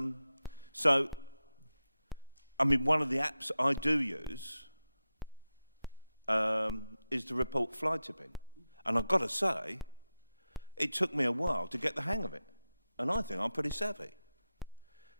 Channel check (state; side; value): inverted; both; correlation -0.94